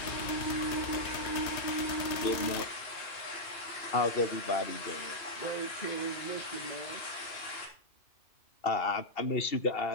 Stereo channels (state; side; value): late; right; 2.5 ms